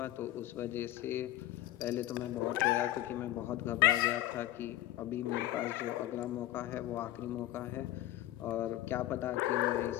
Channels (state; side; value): quieter; right; 15.0 dB